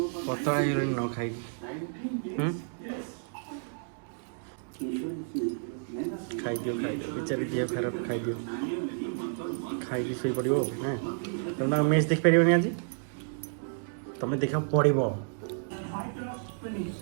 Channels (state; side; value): silent; left; digital silence